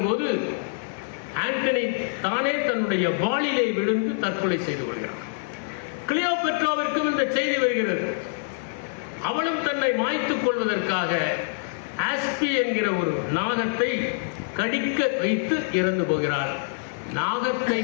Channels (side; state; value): right; silent; digital silence